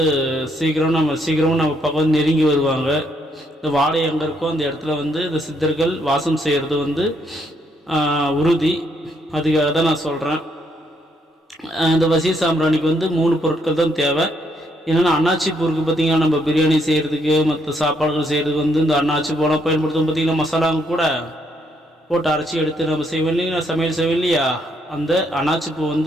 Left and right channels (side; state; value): both; normal; correlation 0.73